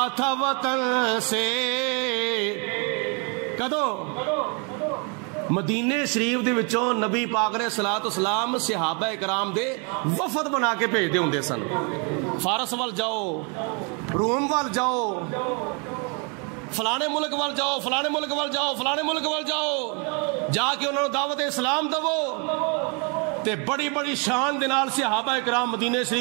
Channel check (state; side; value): quieter; left; 35.0 dB